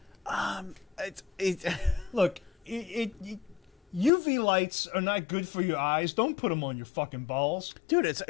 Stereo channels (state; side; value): drops out; right; at 4.1 s